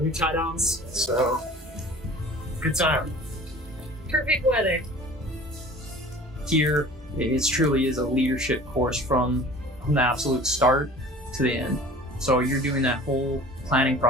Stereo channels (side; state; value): both; normal; correlation 0.44